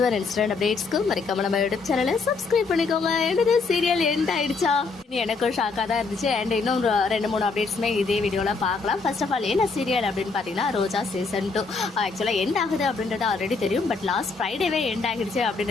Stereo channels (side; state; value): right; quieter; 4.3 dB